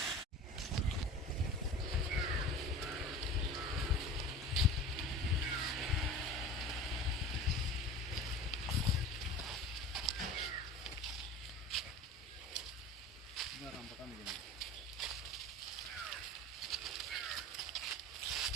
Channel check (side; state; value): both; normal; correlation 0.37